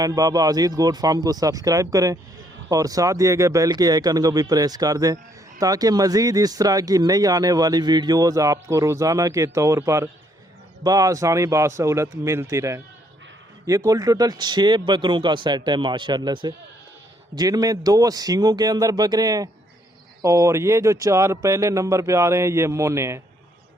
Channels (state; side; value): normal; both; correlation 0.69